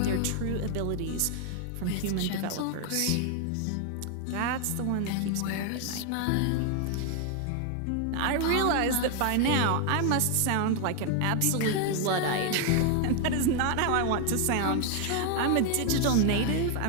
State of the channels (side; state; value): both; different; correlation 0.01